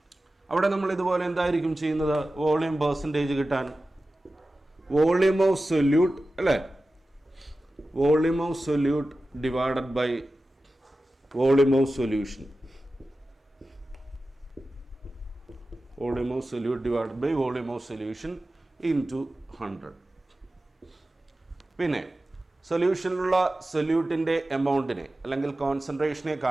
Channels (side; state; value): both; normal; correlation 0.94